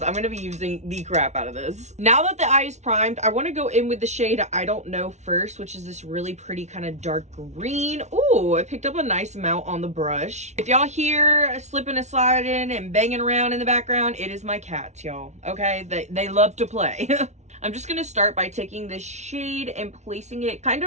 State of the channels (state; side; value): late; left; 0.33 ms